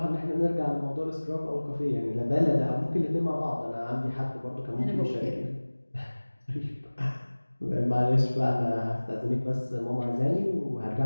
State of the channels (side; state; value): both; inverted; correlation -1.00